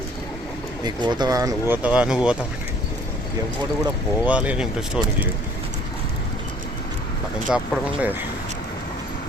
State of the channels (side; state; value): both; normal; correlation 0.56